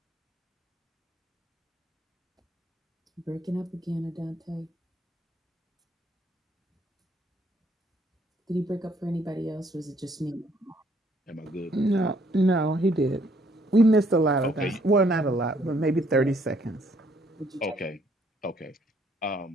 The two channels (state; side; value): normal; both; correlation 0.66